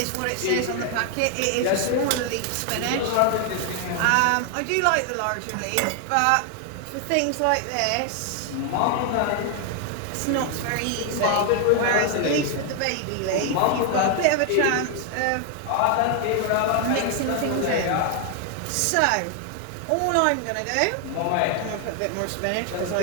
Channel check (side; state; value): both; different; correlation 0.00